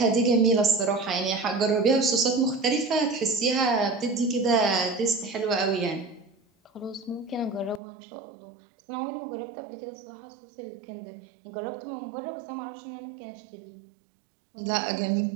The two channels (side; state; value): left; drops out; at 7.8 s